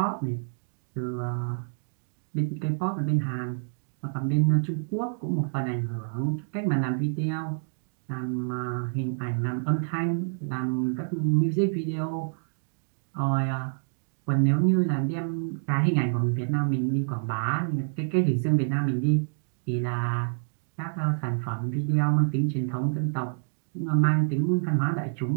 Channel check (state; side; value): silent; left; digital silence